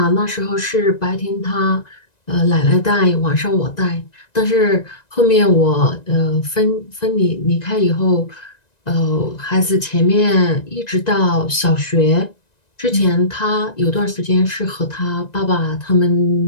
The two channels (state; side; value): late; right; 1.9 ms